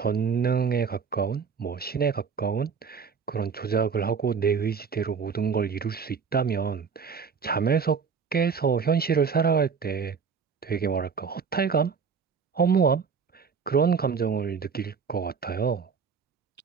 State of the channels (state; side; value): quieter; left; 6.0 dB